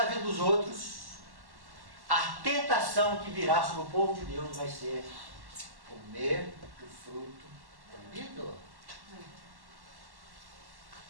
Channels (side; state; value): left; late; 1.1 ms